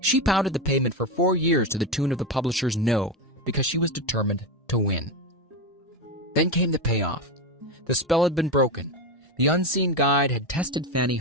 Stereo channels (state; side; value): normal; both; correlation 0.15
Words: She pounded the pavement for 4 years to the tune of the publisher's no, because she was determined to win. Then came the payoff. The spell had been broken. The unseen guide had tested Fannie